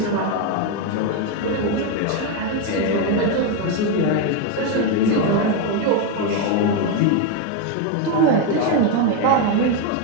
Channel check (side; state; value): both; different; correlation 0.02